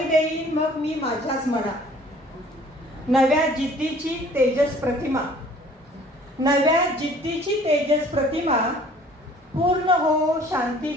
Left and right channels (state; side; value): normal; both; correlation 0.53